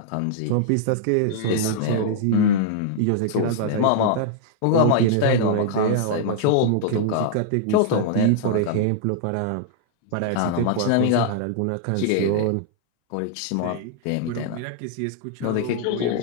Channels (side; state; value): both; different; correlation -0.01